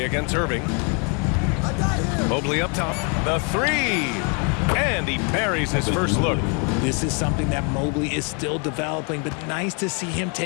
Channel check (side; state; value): right; quieter; 36.2 dB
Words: against Irving. Mobley up top. The 3. And he buries his first look. This is something that Mobley is still developing, but nice to see him